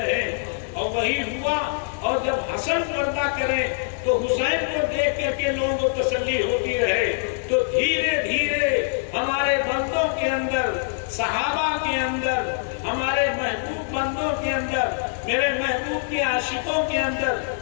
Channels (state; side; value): silent; right; digital silence